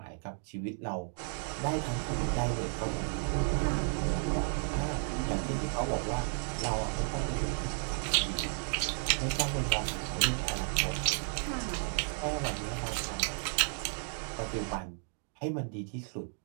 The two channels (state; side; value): silent; left; 56 dB below the other